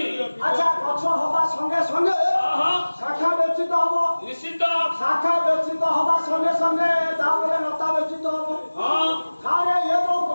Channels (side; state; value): both; inverted; correlation -1.00